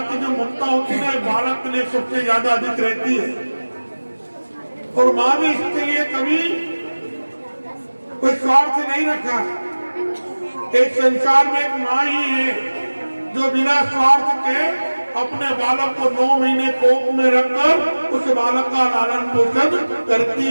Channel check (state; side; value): inverted; both; correlation -1.00